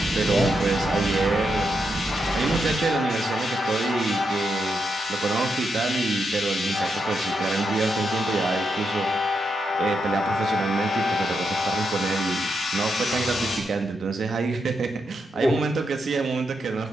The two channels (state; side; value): normal; both; correlation 0.83